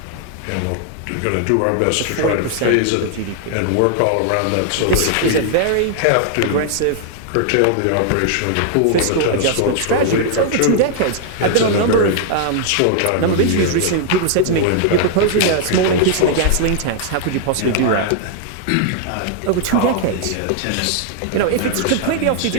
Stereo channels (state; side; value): different; both; correlation -0.01